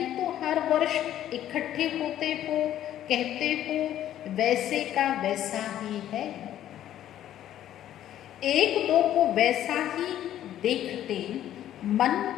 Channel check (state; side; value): quieter; right; 11.8 dB